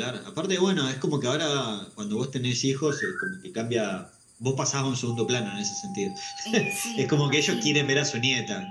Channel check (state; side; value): identical; both; correlation 1.00